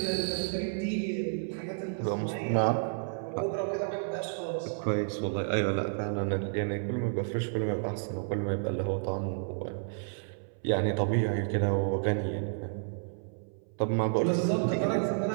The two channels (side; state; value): left; silent; 57 dB below the other